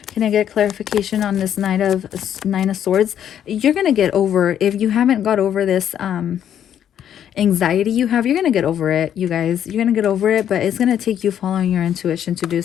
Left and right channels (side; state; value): right; quieter; 9.8 dB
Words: Can I get clarification on this Nine of Swords? You're going to get over, if you haven't got over this anxiety you have, you're going to get over it, you guys. You're going to get over it, but it's going to take you following your intuition to do